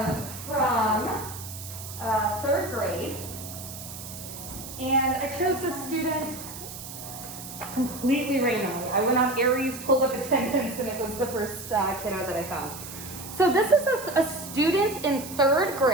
from 3rd grade. And I chose this student completely randomly. I went on Aries, pulled up attendance, and it was the first kiddo that I found. So this is a student in 3rd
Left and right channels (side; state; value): right; noise; hiss, 12 dB below the sound